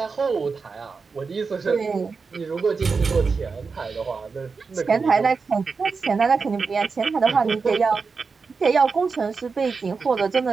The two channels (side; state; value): left; quieter; 4.8 dB